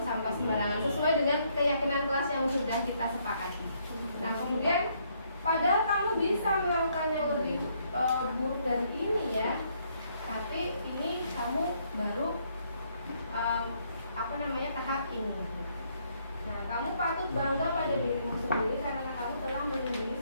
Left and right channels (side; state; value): both; inverted; correlation -0.71